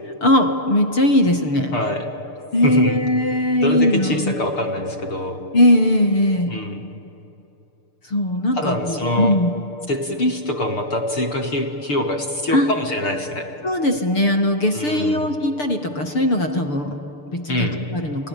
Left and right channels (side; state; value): right; late; 6.7 ms